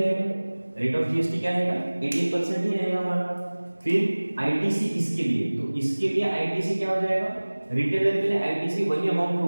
रेट ऑफ जीएसटी क्या रहेगा 18% ही रहेगा हमारा। फिर आईटीसी इसके लिए, तो इसके लिए आईटीसी क्या हो जाएगा रिटेलर के लिए आईटीसी वही अमाउंट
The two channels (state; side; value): inverted; both; correlation -1.00